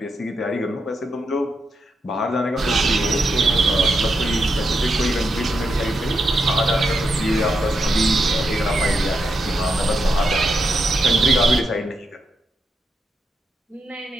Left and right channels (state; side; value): normal; both; correlation 0.83